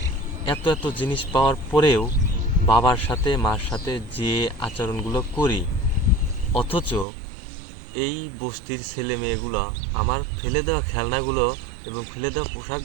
এত এত জিনিস পাওয়ার পরেও বাবার সাথে মার সাথে যে আচরণগুলো করি, অথচ এই বস্তির ছেলে মেয়েগুলো আমার ফেলে দেওয়া খেলনাগুলো এবং ফেলে দেওয়া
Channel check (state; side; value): drops out; left; at 7.1 s